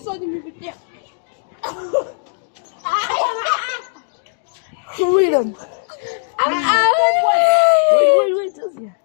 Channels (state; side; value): silent; right; 67 dB below the other